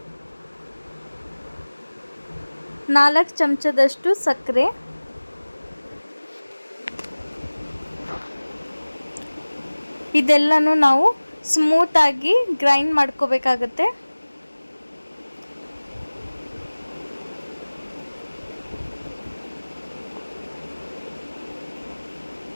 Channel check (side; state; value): both; inverted; correlation -1.00